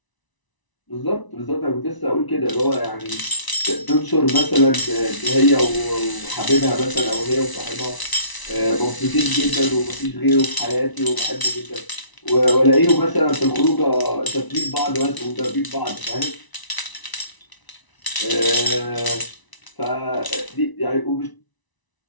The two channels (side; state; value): right; late; 1.0 ms